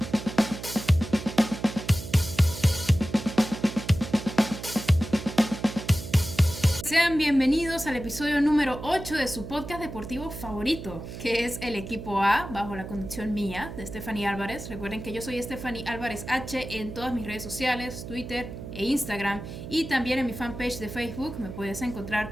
Sean bienvenidos al episodio número 8 de su podcast deportivo favorito, que es el Equipo A, bajo la conducción mía, de Stephanie Álvarez. Recuerden que yo soy Stephanie Álvarez H en todas mis redes sociales, Twitter e Instagram, y también en mi fanpage de Facebook me puedes encontrar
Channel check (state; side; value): noise; right; hum, 10 dB below the sound